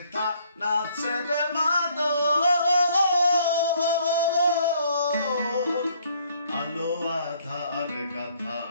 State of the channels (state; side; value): inverted; both; correlation -0.64